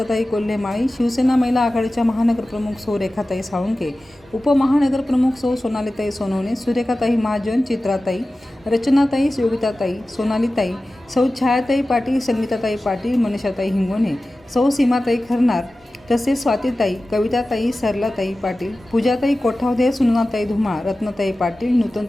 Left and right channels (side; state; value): both; normal; correlation 0.95